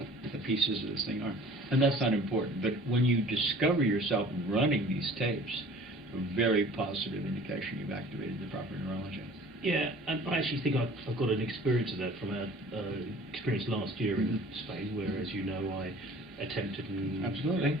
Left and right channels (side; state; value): both; normal; correlation 0.47